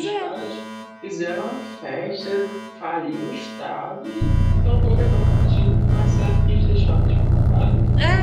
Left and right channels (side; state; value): both; identical; correlation 1.00